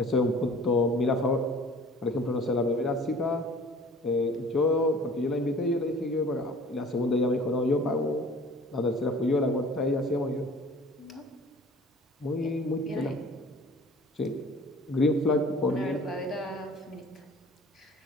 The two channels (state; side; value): normal; both; correlation 0.47